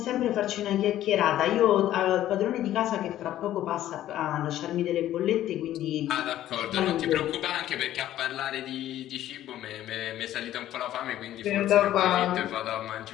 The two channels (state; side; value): quieter; right; 12.9 dB